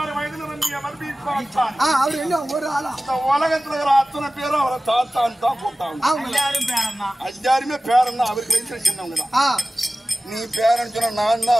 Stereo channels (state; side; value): normal; both; correlation 0.97